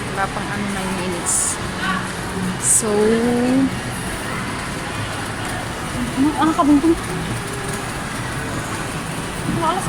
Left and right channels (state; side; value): identical; both; correlation 1.00